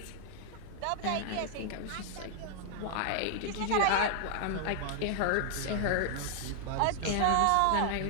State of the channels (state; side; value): different; both; correlation 0.00